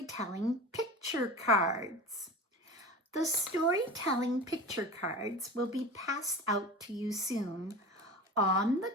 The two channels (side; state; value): both; normal; correlation 0.32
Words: picture cards. The storytelling picture cards will be passed out to you soon. On the